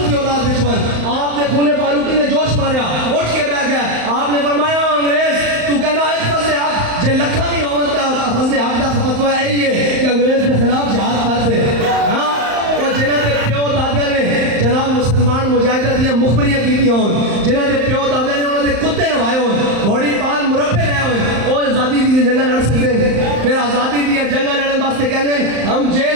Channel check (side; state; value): left; late; 35 ms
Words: کی اولاد وچوں، آپ نے خون فاروقی نے جوش ماریا، اٹھ کے بیٹھ گئے. آپ نے فرمایا انگریز تو کہنا ہے فضل حق جے لکھا نہیں ہوتا فضل حق دا فتوی یہی ہے کہ انگریز کے خلاف جہاد کر دے. ہاں اور جنہاں دے پیو دادے نے جناب مسلمان مجاہدہ دیاں مخبریاں کیتی ہون، جنہاں دے پیو دادے نے انہوں نے کتے نوائے ہون، گھوڑی پال مربے لے ہون، وہ آزادی دی جنگاں لڑ سکتے ہیں. پھر آزادی دی جنگاں لڑن واسطے کہنے ہم